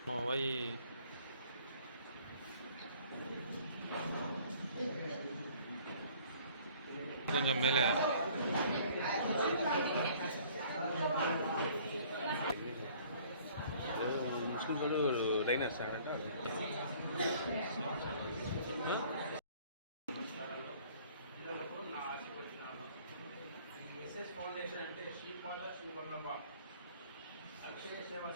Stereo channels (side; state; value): both; inverted; correlation -0.55